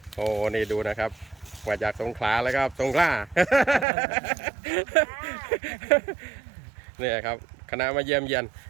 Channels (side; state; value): left; drops out; at 3.9 s